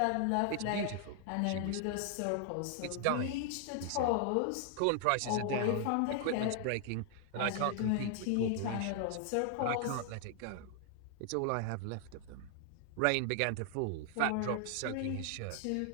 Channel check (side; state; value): both; different; correlation 0.00